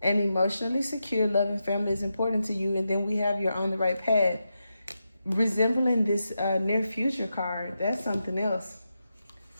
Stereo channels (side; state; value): both; inverted; correlation -0.88